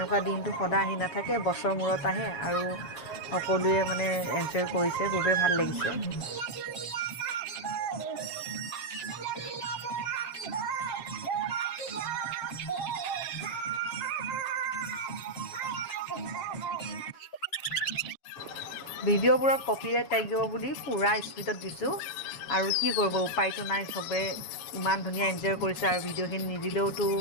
দিনটো সদায় আহি নাথাকে, বছৰ মূৰত আহে আৰু সকলোৱে মানে এনজয় কৰিছে, খুবেই ভাল লাগিছে। ভিডিঅ'বোৰত কপিৰাইট লাগিব বুলি পূৰা স্পীডত দিছোঁ, আৰু কি কৰিব, উপায়টো নাই। চবে ইমান ধুনীয়া এনজয় কৰিছে আৰু ভিডিঅ'খিনি নিদিলেওতো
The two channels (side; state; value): right; late; 7.1 ms